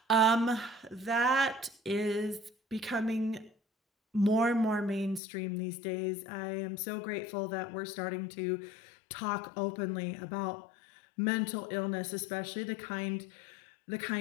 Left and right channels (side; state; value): right; drops out; at 5.2 s